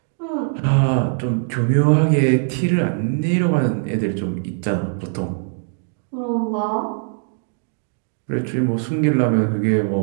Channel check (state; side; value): silent; left; 65 dB below the other